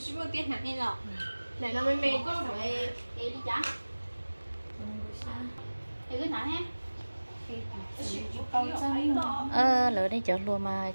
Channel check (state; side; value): inverted; both; correlation -1.00